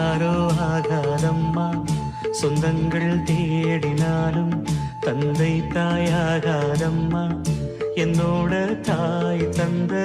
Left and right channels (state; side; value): identical; both; correlation 1.00